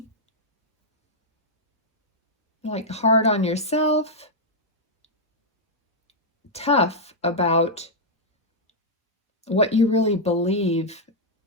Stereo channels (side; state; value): both; normal; correlation -0.05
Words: hard on yourself, tough about what you really believe